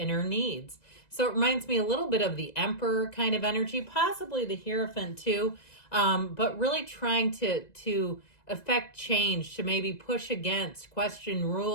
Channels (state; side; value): late; right; 2.0 ms